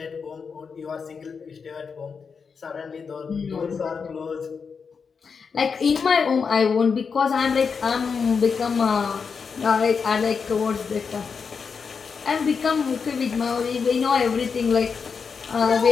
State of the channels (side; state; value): right; quieter; 5.7 dB